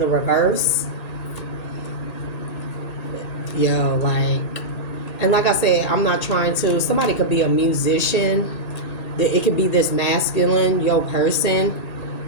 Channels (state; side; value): late; right; 1.8 ms